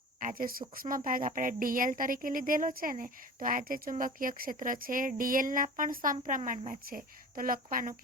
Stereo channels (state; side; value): normal; both; correlation 0.37